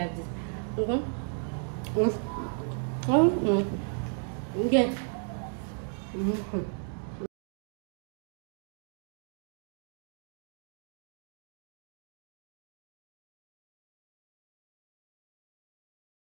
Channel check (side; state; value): left; silent; 55 dB below the other